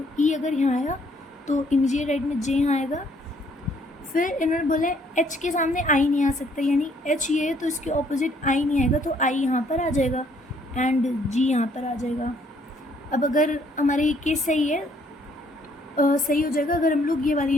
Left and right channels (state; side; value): normal; both; correlation 0.65